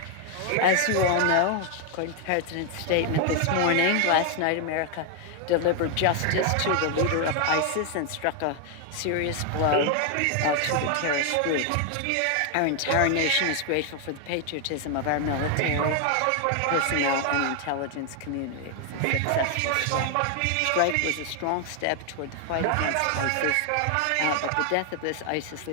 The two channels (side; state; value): both; different; correlation 0.00